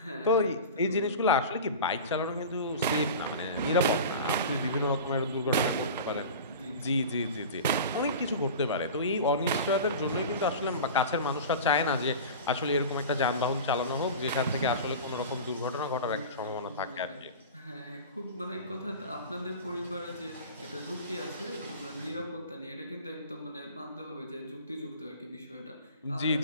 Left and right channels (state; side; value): inverted; both; correlation -0.33